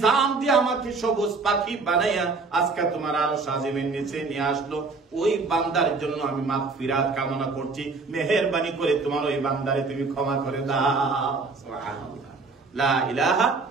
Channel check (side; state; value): left; quieter; 4.1 dB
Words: দিয়ে আমাকে সবুজ পাখি বানাইয়া আজকে তোমার আরশ আজিমের নিচে নিয়ে আসলো, ওই বান্দার জন্য আমি মাগফিরাত কামনা করছি, মেহেরবানি করে তোমার ওই বান্দারে তুমি ক্ষমা করে দাও। সুবহানাল্লাহ। লা ইলাহা